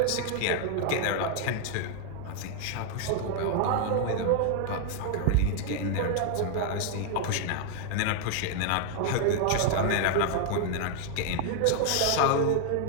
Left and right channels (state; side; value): different; both; correlation 0.00